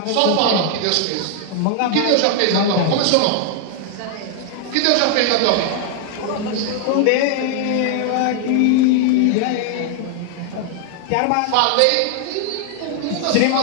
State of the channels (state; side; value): different; both; correlation 0.00